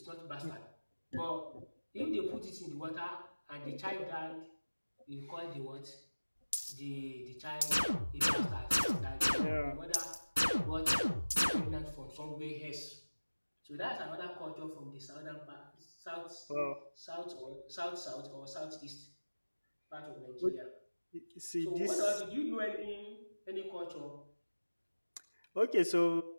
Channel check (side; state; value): both; inverted; correlation -1.00